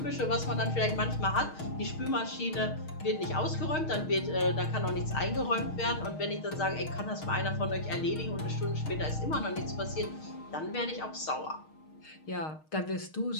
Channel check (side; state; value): right; late; 6.4 ms